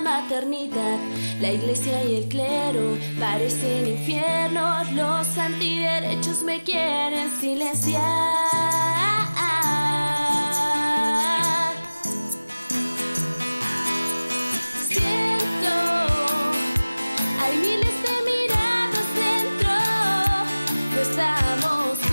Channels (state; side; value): inverted; both; correlation -0.99